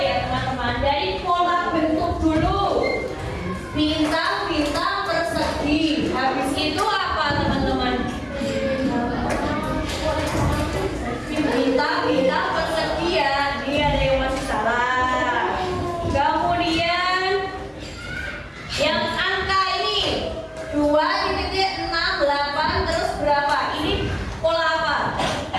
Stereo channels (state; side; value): identical; both; correlation 1.00